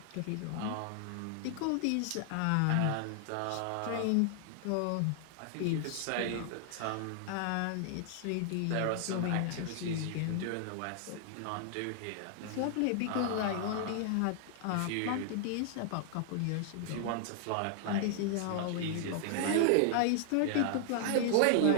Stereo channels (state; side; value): different; both; correlation 0.00